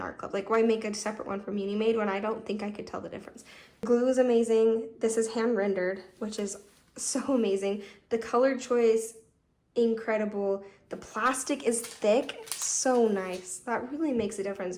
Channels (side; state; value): both; identical; correlation 1.00